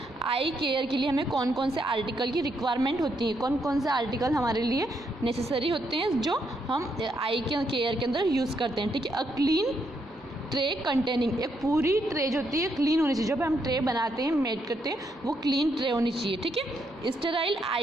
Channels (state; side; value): normal; both; correlation 0.77